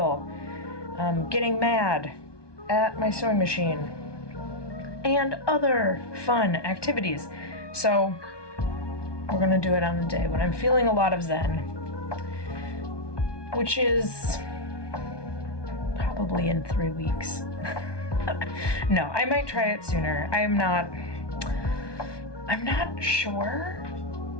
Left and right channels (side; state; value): right; late; 1.2 ms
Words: getting mad at my sewing machine, and other fun activities. So we're gonna do it on a day when I'm feeling a lot of zen, which is probably in 3 weeks. No, I might try it sooner. I'm not sure